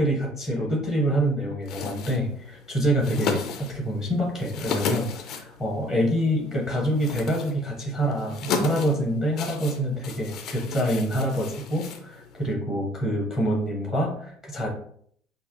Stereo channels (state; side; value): normal; both; correlation 0.57